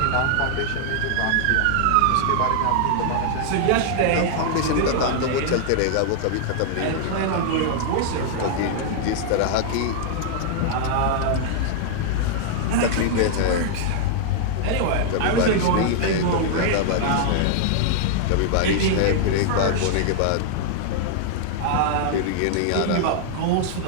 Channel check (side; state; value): both; different; correlation -0.01